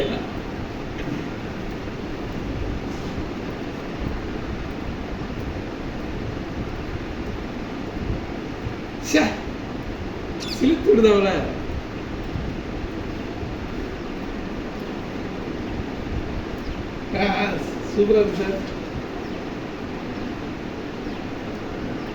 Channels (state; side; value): identical; both; correlation 1.00